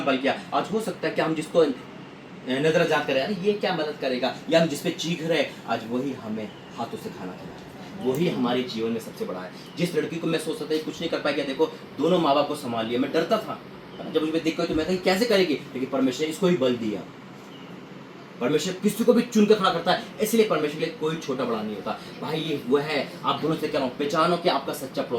किया। आज हो सकता है कि हम जिसको नजरअंदाज करें, अरे ये क्या मदद करेगा, या हम जिसपे चीख रहे, आज वही हमें हाथों से खाना खिलाए, वही हमारे जीवन में सबसे बड़ा है। जिस लड़की को मैं सोचता था कुछ नहीं कर पाएगी, देखो दोनों माँ बाप को संभाल लिया, मैं डरता था, जब मुझे दिक्कत तो मैं कही कैसे करेगी, लेकिन परमेश्वर ने इसको ही बल दिया। परमेश्वर किसी को भी चुन कर खड़ा करता है, इसलिए परमेश्वर के लिए कोई छोटा बड़ा नहीं होता। भाई ये वो है, आप दोनों से कह रहा हूँ, पहचानो कि आपका सच्चा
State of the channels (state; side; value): identical; both; correlation 1.00